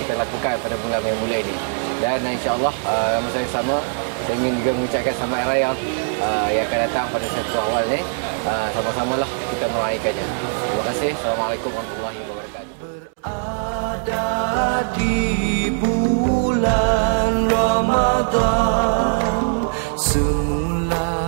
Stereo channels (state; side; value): silent; left; digital silence